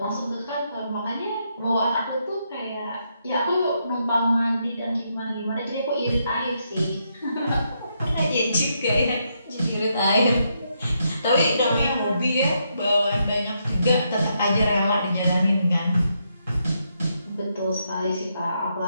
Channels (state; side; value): inverted; both; correlation -0.79